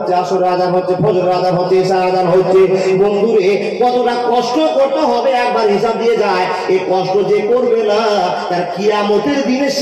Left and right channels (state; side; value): identical; both; correlation 1.00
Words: আসরের আযান হচ্ছে, ফজরের আযান হচ্ছে, ইশার আযান হচ্ছে। বন্ধু রে, কতটা কষ্ট করতে হবে একবার হিসাব দিয়ে যায়। এই কষ্ট যে করবে না, তার কিয়ামতের দিনে